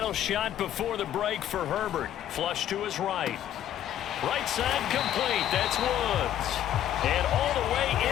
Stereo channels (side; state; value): right; quieter; 11.3 dB